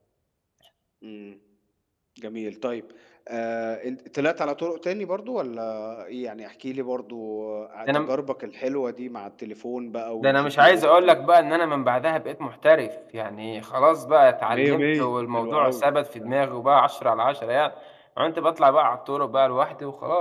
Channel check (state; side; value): identical; both; correlation 1.00